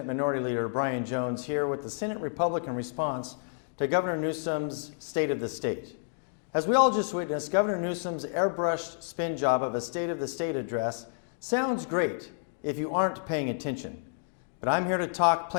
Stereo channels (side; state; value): right; silent; digital silence